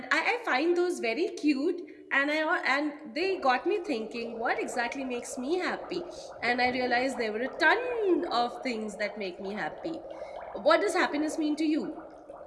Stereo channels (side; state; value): both; identical; correlation 1.00